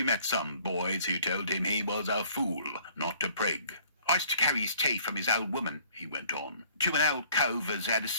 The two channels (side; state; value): both; inverted; correlation -0.56